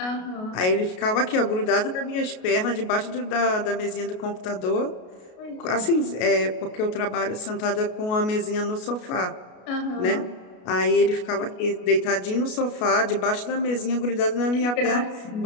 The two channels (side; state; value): right; late; 33 ms